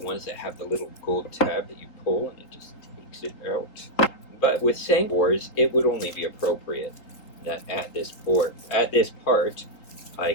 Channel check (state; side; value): late; right; 4.0 ms